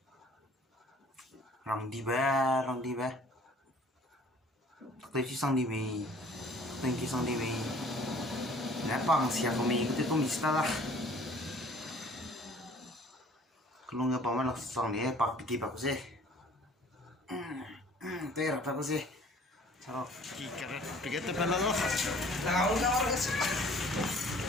rong đi bé. Tôi chỉ sang đi về, tôi chỉ sang đi về. Nãy bằng xia của mình tôi cũng biết đó. Kalau nggak paman langsung nih, pak piti pak sih. Tuh rata pak sih. Chalo, kita begitu pernah loh. Tahu nggak orang sih?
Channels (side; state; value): both; normal; correlation 0.53